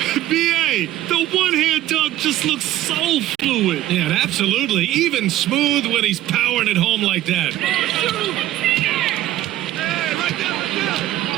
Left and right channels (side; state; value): left; quieter; 14.2 dB